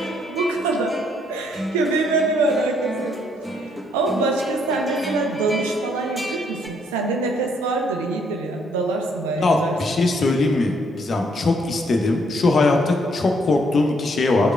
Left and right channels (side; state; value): both; normal; correlation 0.69